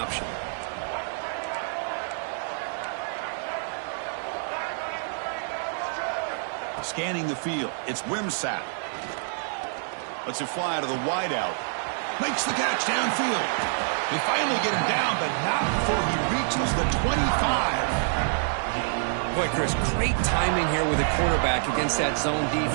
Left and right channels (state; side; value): silent; left; digital silence